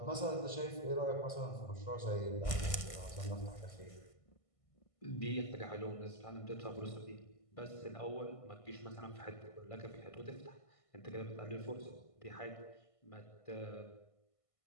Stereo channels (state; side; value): late; right; 1.5 ms